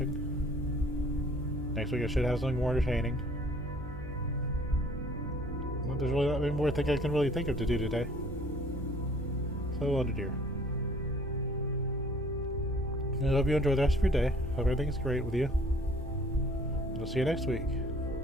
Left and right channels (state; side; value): noise; right; hum, 11 dB below the sound